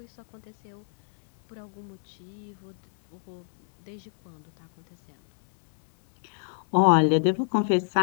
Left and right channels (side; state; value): right; silent; 60 dB below the other